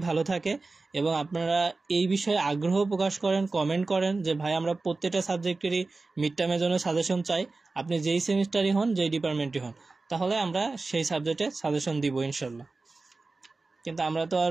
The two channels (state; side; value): quieter; left; 3.6 dB